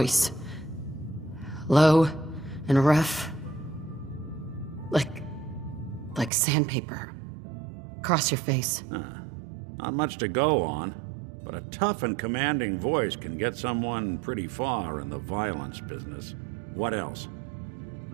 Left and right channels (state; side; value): drops out; left; at 6.3 s